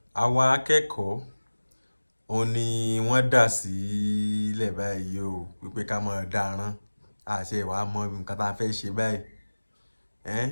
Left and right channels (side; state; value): both; inverted; correlation -1.00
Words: àwọn akẹ́kọ̀ọ́ òun ni wọ́n dà sílẹ̀ báyìí o wípé ká máa dáràn àṣẹ ìwà mọ nǹkan tá a fẹ́ ṣe báyìí